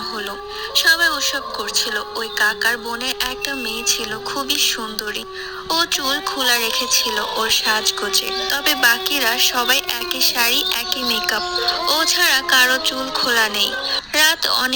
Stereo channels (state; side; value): identical; both; correlation 1.00